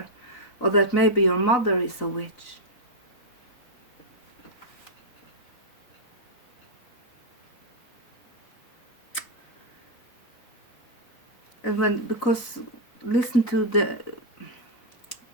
or that maybe your mother is a witch. And because listen to the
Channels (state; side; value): late; right; 4.0 ms